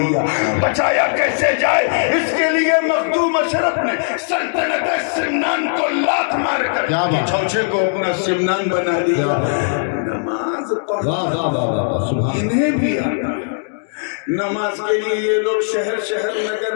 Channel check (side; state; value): right; silent; digital silence